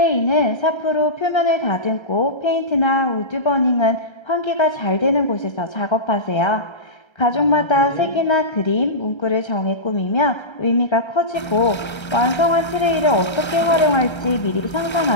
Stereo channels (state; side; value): late; right; 1.3 ms